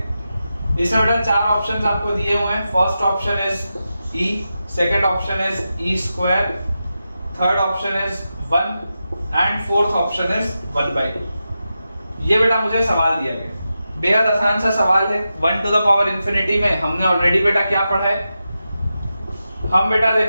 इसमें बेटा 4 ऑप्शंस आपको दिए हुए हैं। First option is e, second option is e square, third option is 1 and fourth option is 1 by 2। ये बेटा मुझे सवाल दिया गया, बेहद आसान सा सवाल है। 1 टू द पावर इन्फिनिटी में हमने ऑलरेडी बेटा क्या पढ़ा है, हम बेटा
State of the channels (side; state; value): both; inverted; correlation -0.90